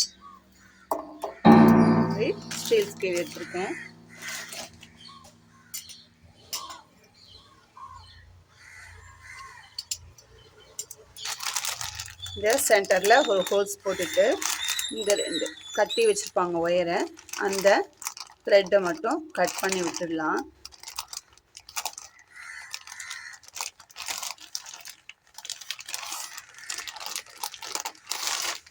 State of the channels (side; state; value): both; identical; correlation 1.00